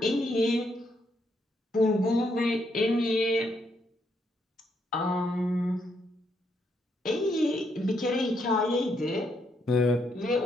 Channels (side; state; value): both; normal; correlation 0.76